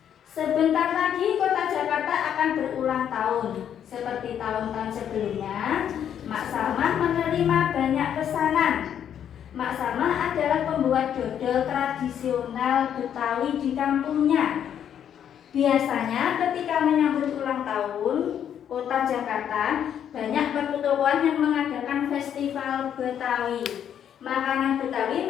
Sebentar lagi Kota Jakarta akan berulang tahun. Seperti tahun-tahun sebelumnya, Mak Salmah menerima banyak pesanan. Mak Salmah adalah pembuat dodol tradisional Betawi di kampungnya. Biasanya ketika menyambut ulang tahun Kota Jakarta, banyak pertokoan yang mengadakan festival Betawi. Makanan Betawi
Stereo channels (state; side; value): quieter; right; 9.2 dB